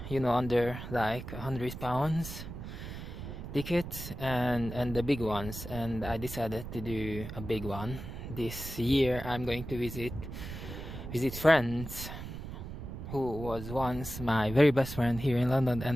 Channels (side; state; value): right; noise; rumble, 9 dB below the sound